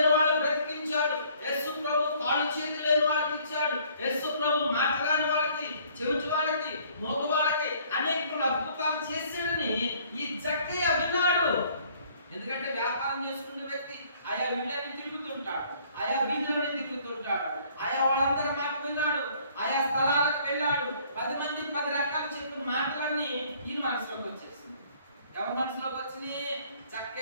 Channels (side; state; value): both; inverted; correlation -0.59